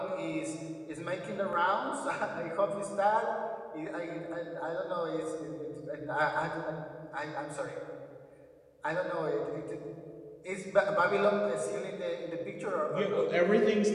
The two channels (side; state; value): both; identical; correlation 1.00